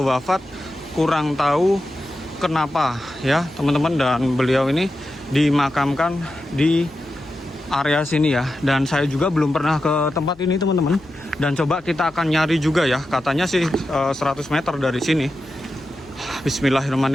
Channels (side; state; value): left; noise; hum, 28 dB below the sound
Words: wafat kurang tahu kenapa ya teman-teman. Dan beliau ini dimakamkan di area sini ya. Dan saya juga belum pernah ke tempat ini teman-teman. Dan coba kita akan nyari juga ya. Katanya sih 100 meter dari sini.